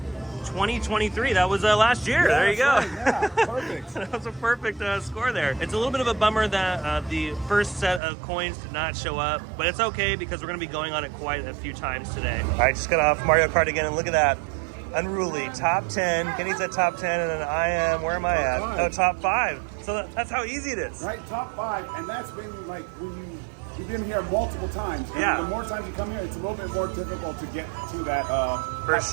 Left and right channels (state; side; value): drops out; left; at 8.0 s